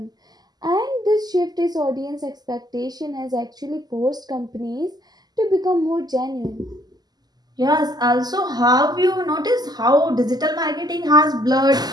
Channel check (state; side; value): late; left; 0.20 ms